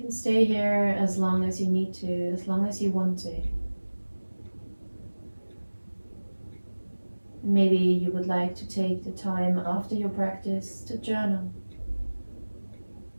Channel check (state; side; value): inverted; both; correlation -1.00